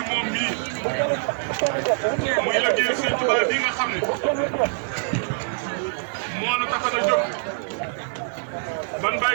moom mii muy liggéey Serigne Touba bi nga xam ne moo nu tax a jóg ban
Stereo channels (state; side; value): silent; left; digital silence